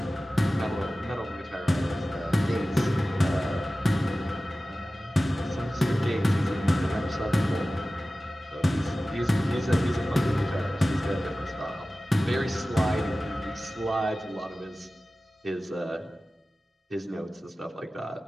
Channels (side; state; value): both; normal; correlation 0.96